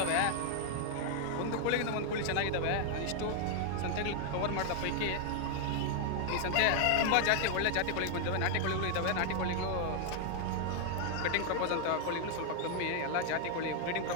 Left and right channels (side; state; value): both; different; correlation 0.00